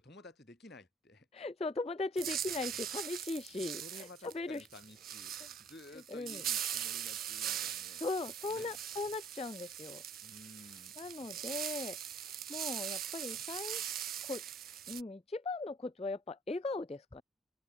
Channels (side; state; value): both; normal; correlation 0.56